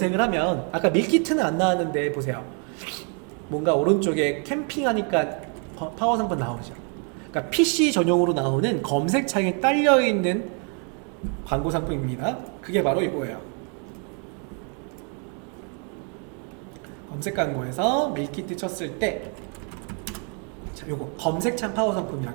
하면 아까 밀키트는 안 나왔는데 보세요. 뭔가 오른쪽에 캠핑하니까 파워 상품 나오죠. 그러니까 PC 전용으로 나오는 검색창에 딸려있는 광고 상품입니다. 그게 바로 이거예요. 검색 광고에서 밀키트 쳤을 때, 자, 요거 검색창 파워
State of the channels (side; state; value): left; quieter; 39.5 dB